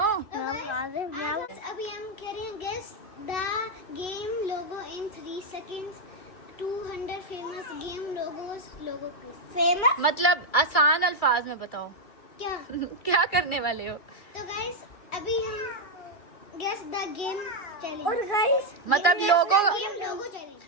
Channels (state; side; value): late; right; 2.3 ms